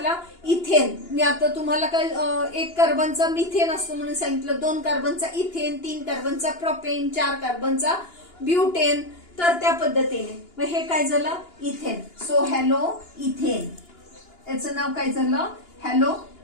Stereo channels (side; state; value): right; late; 2.9 ms